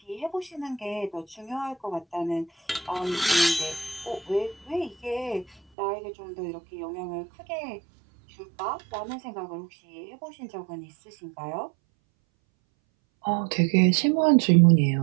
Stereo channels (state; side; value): drops out; left; at 5.6 s